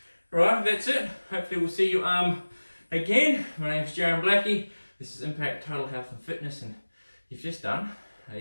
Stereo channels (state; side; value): inverted; both; correlation -1.00